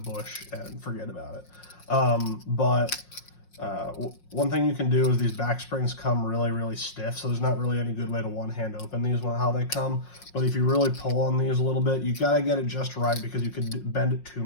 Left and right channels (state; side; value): late; right; 5.6 ms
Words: and forget about it. One thing you can do is these back springs come really stiff, so there's not really any good way to one hand open these when how they come. But if you really pull on these a little bit, you gotta get it just right, because you could bend it too